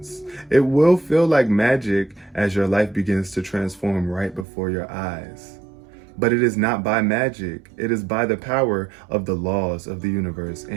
It will feel like magic as your life begins to transform right before your eyes. But it is not by magic. It is by the power of the laws of the universe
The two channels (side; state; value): left; drops out; at 4.5 s